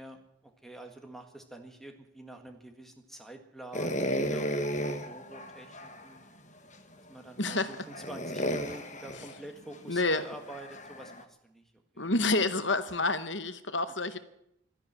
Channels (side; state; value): both; normal; correlation 0.13